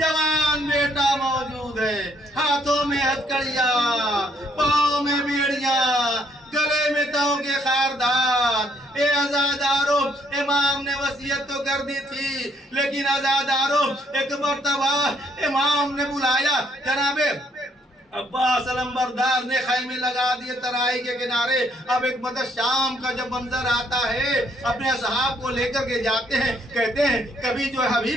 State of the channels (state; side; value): normal; both; correlation 0.69